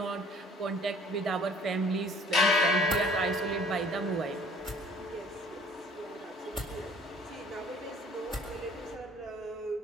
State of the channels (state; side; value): normal; both; correlation 0.54